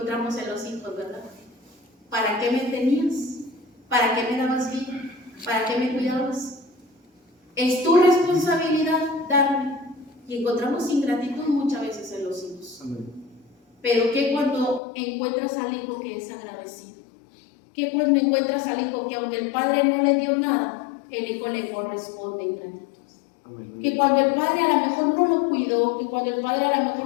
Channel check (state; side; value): drops out; right; at 14.8 s